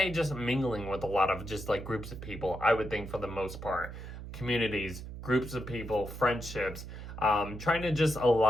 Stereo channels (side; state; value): right; noise; hum, 10 dB below the sound